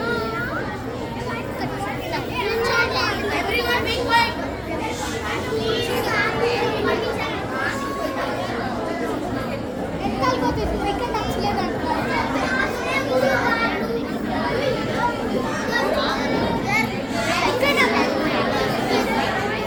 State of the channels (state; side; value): identical; both; correlation 1.00